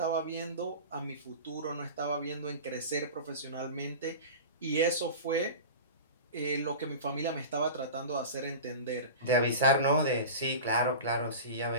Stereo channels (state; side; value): inverted; both; correlation -0.32